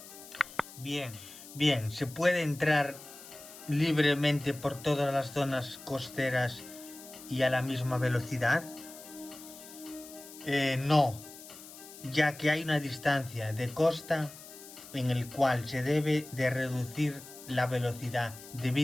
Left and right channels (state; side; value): noise; left; hiss, 16 dB below the sound